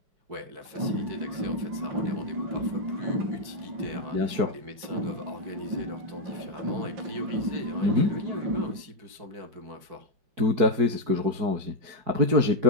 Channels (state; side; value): late; left; 4.6 ms